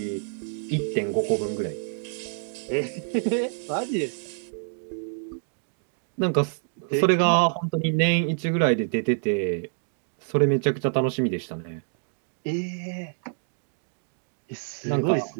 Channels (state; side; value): silent; left; digital silence